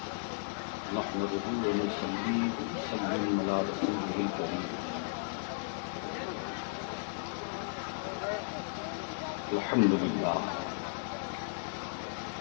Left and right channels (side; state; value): right; silent; 55 dB below the other